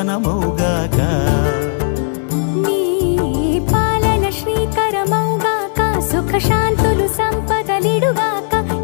నీ పాలన శ్రీకరమౌగాక సుఖ శాంతులు సంపదలిడుగాక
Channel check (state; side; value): silent; right; 61 dB below the other